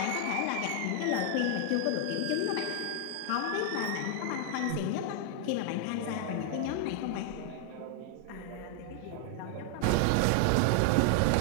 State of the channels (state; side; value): different; both; correlation 0.00